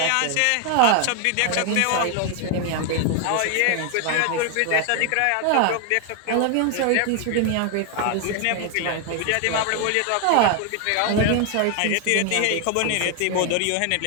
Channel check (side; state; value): both; different; correlation 0.00